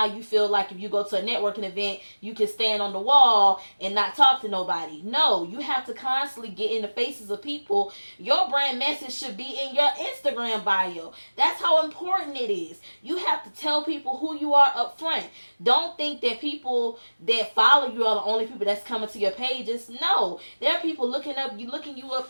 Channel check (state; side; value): inverted; both; correlation -1.00